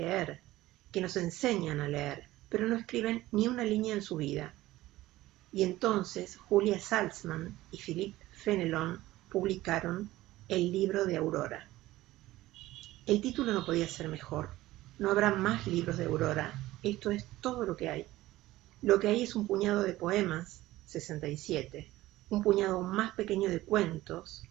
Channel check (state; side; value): quieter; left; 16.7 dB